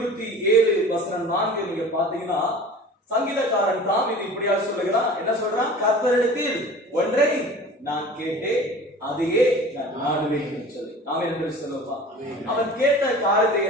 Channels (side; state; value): both; normal; correlation 0.41